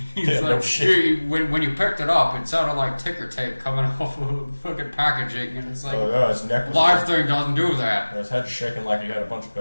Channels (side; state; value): both; inverted; correlation -1.00